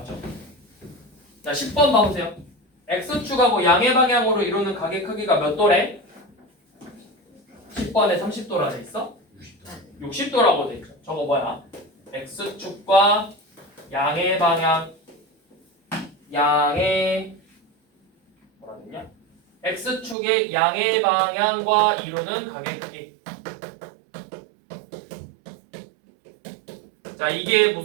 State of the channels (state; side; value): drops out; left; at 20.2 s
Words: 자, 10번 봐보세요. x축하고 양의 방향으로 이루는 각의 크기가 몇 도래? 10번에 30도라 돼 있어? 60도라고 돼 있죠. 저거 뭐야? x축과 양의 방향, 뭐라 됐냐? x축의 양의 방향과 이루는 각의 크기. 자, 이게